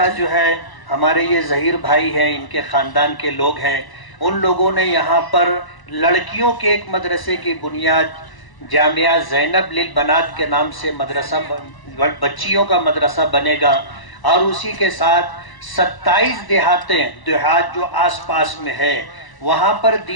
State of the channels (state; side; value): late; right; 1.0 ms